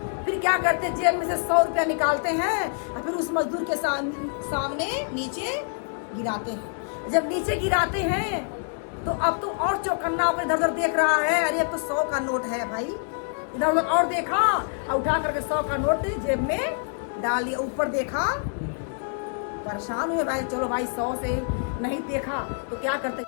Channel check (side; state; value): right; silent; 61 dB below the other